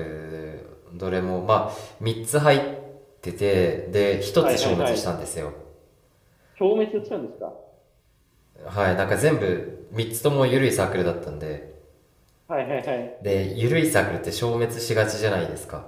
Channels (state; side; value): identical; both; correlation 1.00